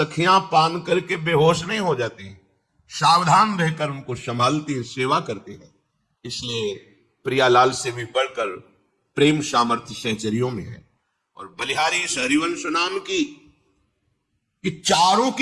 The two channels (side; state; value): both; identical; correlation 1.00